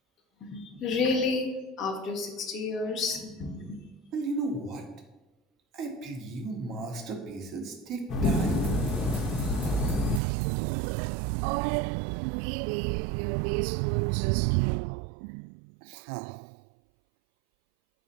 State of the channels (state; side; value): drops out; left; at 10.2 s